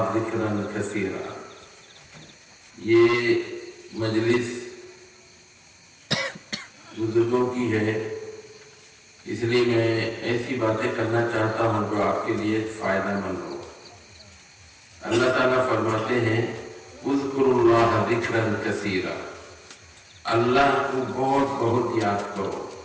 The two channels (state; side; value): identical; both; correlation 1.00